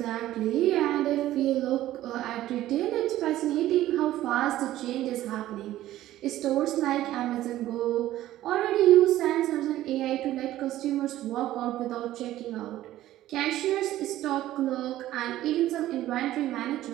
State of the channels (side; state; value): left; quieter; 14.3 dB